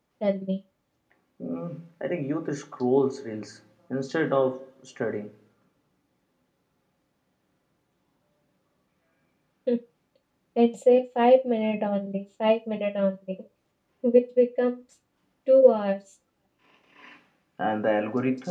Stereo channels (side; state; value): both; identical; correlation 1.00